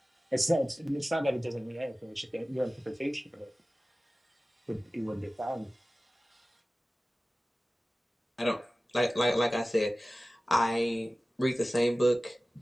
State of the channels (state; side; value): normal; both; correlation 0.96